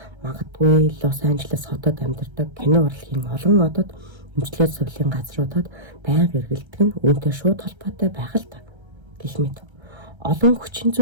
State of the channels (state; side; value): late; left; 1.3 ms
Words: Магадгүй Лос Анжелес хотод амьдардаг кино урлагийн олон одод эмчилгээ сувлийн газруудад байнга эргэлдэг нь үүнтэй шууд холбоотой байх л та. Гэх мэт олон хүчин